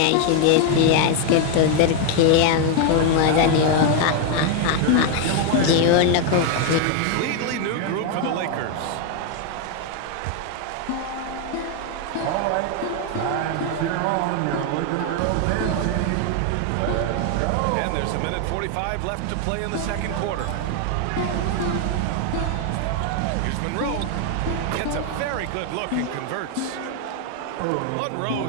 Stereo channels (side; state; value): both; different; correlation 0.01